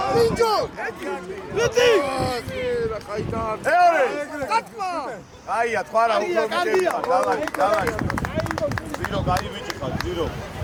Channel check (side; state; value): both; identical; correlation 1.00